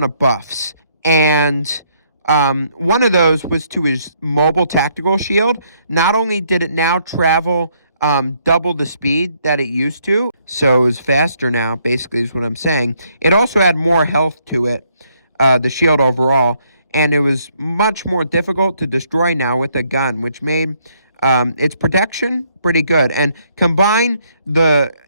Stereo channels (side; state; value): both; inverted; correlation -0.70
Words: of buffs. And one of those was to his mobile tactical shield. Not only did it now travel double the speed that it used to, so it was faster now, basically is what I'm saying. It also had more health to it, the shield overall, and it was much more difficult to destroy now with a gun, which made its protection pretty good. And combine the